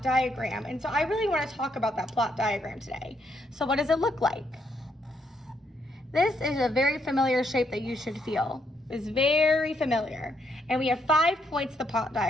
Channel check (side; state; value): both; normal; correlation 0.75